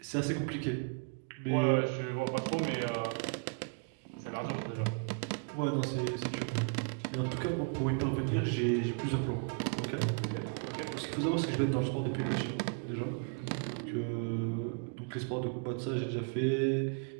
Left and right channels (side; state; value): left; quieter; 34.6 dB